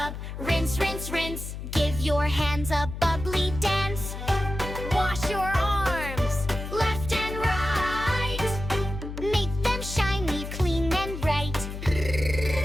rinse, rinse, rinse. Give your hands a bubbly dance. Wash your arms, left and right. Make them shiny, clean and bright.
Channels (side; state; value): left; noise; hum, 8 dB below the sound